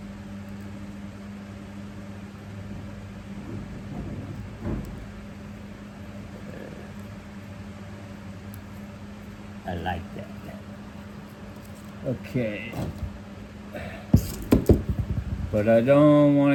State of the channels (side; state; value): both; identical; correlation 1.00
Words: like that. Okay. But I don't want